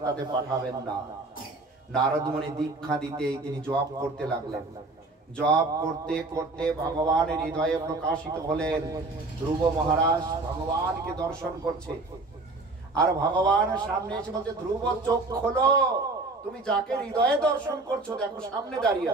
পাঠাবেন না। নারদ মুনি দীক্ষা দিতেই তিনি জপ করতে লাগলেন। জপ করতে করতে ভগবানের হৃদয়ে প্রকাশিত হলেন। ধ্রুব মহারাজ ভগবানকে দর্শন করছে, আর ভগবান সামনে এসে বলছে, ধ্রুব চোখ খোলো, তুমি যাকে হৃদয়ে দর্শন করছো দেখো সামনে দাঁড়িয়ে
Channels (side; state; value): left; quieter; 3.3 dB